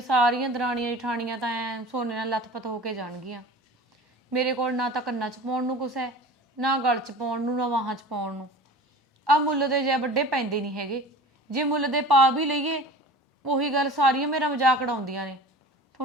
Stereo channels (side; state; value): both; normal; correlation 0.39